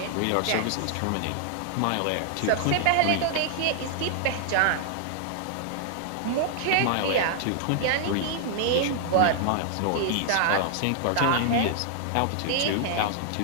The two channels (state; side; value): different; both; correlation -0.01